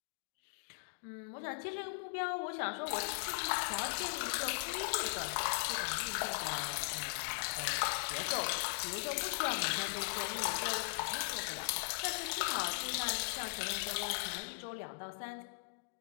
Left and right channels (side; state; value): right; silent; digital silence